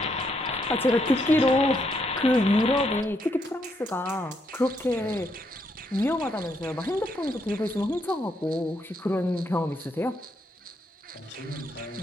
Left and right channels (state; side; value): normal; both; correlation 0.76